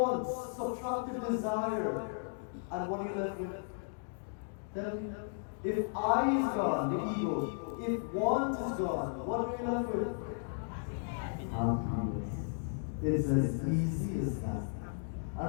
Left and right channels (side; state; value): right; silent; digital silence